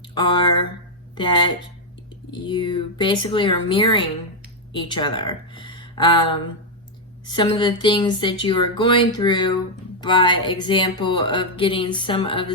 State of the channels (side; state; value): both; normal; correlation 0.00